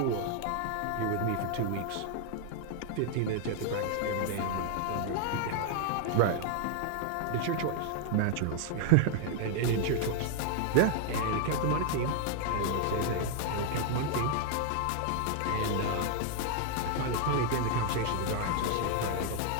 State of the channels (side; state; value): both; different; correlation 0.00